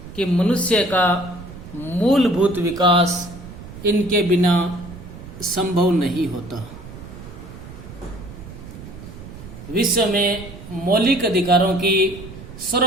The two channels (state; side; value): noise; right; rumble, 14 dB below the sound